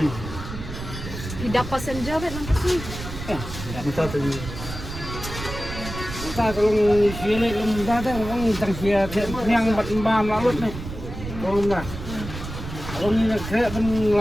Tidak passenger bet nang kasi. minta tu Kita kalau sini lembah tu orang tang sia yang bat lalut ni. Kalau nak. Kalau ni nak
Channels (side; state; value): right; noise; rumble, 9 dB below the sound